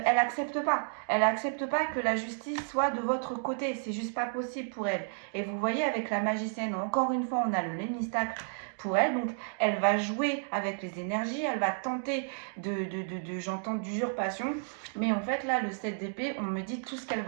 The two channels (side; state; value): left; silent; digital silence